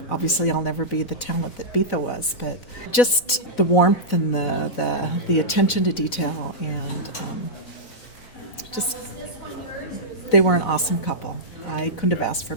Obviously, I'll never be the talent that Betha was, but just the warmth and the attention to detail, and just they were an awesome couple. I couldn't have asked for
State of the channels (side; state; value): right; late; 4.0 ms